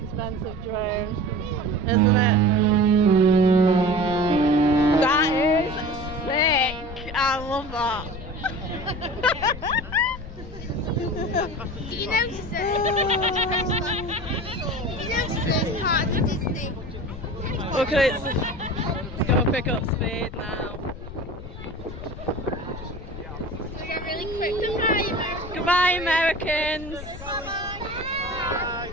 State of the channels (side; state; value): left; noise; rumble, 12 dB below the sound